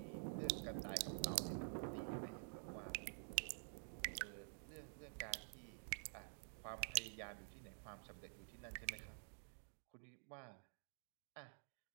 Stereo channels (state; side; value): silent; left; digital silence